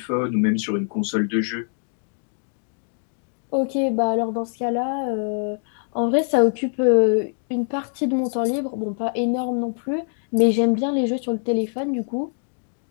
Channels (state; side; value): silent; right; 63 dB below the other